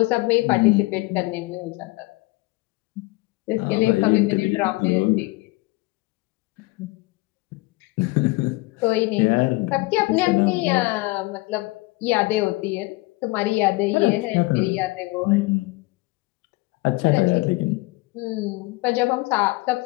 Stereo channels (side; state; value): right; quieter; 22.7 dB